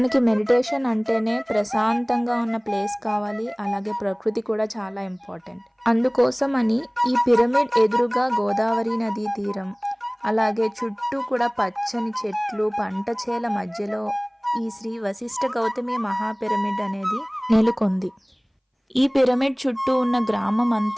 మెడిటేషన్ అంటేనే ప్రశాంతంగా ఉన్న ప్లేస్ కావాలి, అలాగే ప్రకృతి కూడా చాలా ఇంపార్టెంట్. అందుకోసం అని ఈ పిరమిడ్ ఎదురుగా గోదావరి నదీ తీరం, అలాగే చుట్టూ కూడా పచ్చని చెట్లు, పంట చేల మధ్యలో ఈ శ్రీ వశిష్ఠ గౌతమి మహా పిరమిడ్ అనేది నెలకొంది. ఈ పిరమిడ్ చుట్టూ ఉన్న గ్రామం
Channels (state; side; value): identical; both; correlation 1.00